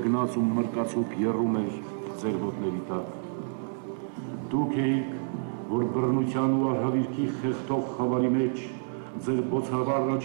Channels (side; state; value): left; silent; digital silence